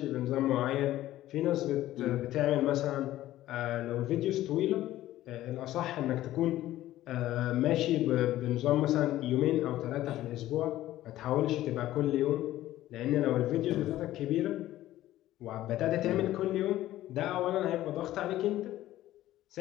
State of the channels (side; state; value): right; quieter; 14.6 dB